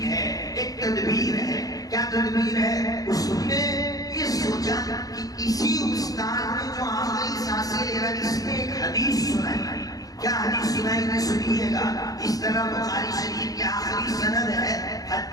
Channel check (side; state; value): right; late; 0.18 ms